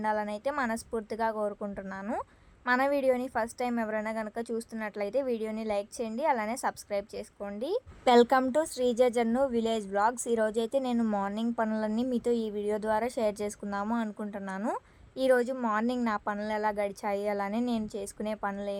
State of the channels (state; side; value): identical; both; correlation 1.00